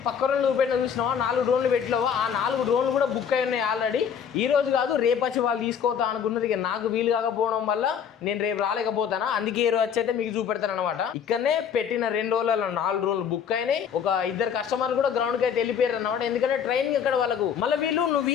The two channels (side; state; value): right; quieter; 7.7 dB